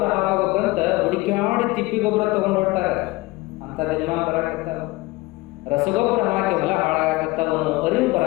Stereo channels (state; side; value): quieter; right; 21.2 dB